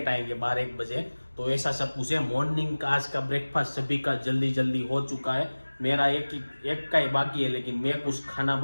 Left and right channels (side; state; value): both; inverted; correlation -1.00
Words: आएंगे 12-1 बजे। तो ऐसा सब कुछ है। मॉर्निंग का आज का ब्रेकफास्ट सभी का जल्दी जल्दी हो चुका है। मेरा एक का ही बाकी है, लेकिन मैं कुछ खाना